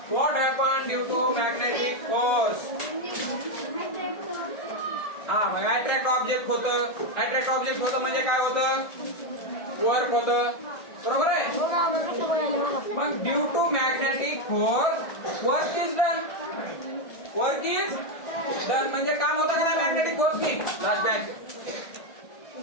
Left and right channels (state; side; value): late; right; 1.6 ms